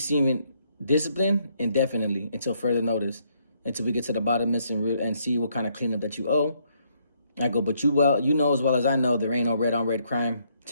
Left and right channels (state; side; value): inverted; both; correlation -0.72